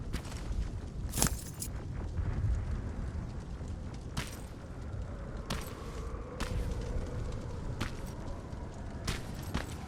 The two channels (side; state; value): both; identical; correlation 1.00